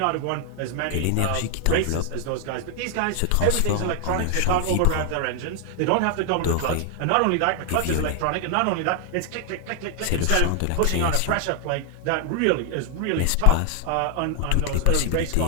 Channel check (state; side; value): different; both; correlation 0.00